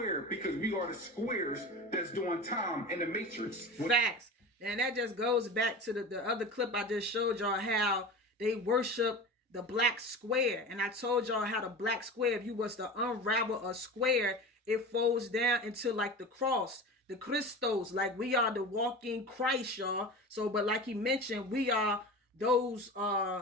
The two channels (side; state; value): both; normal; correlation 0.31